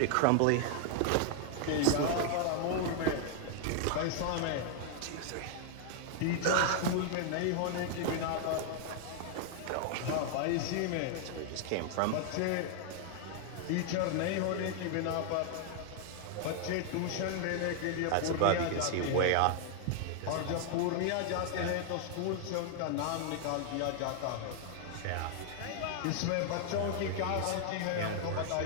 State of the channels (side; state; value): both; different; correlation 0.00